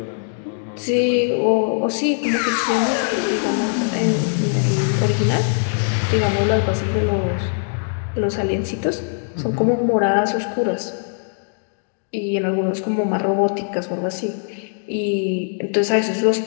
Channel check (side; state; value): right; silent; digital silence